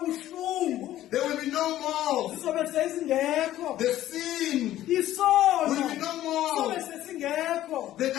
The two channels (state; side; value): quieter; right; 13.6 dB